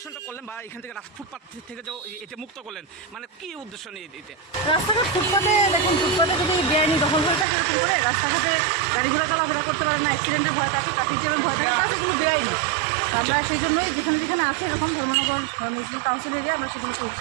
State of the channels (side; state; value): left; drops out; at 7.5 s